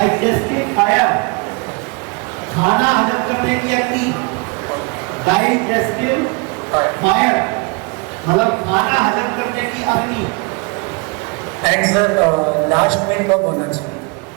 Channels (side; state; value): left; quieter; 30.9 dB